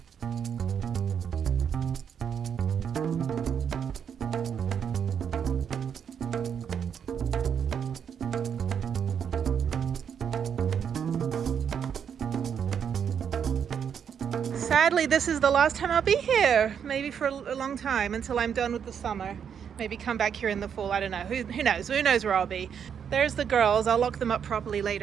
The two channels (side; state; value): left; quieter; 7.8 dB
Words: Sadly, this is the last time I'll be here, maybe for a long time, until I'm done with the summer. Maybe come back here in the fall, I don't know. Who knows? Who knows where I'll be? There's the girls. I'll lock them up properly